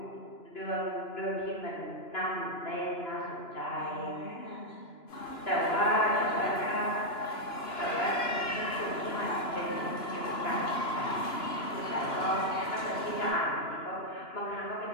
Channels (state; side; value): late; right; 2.9 ms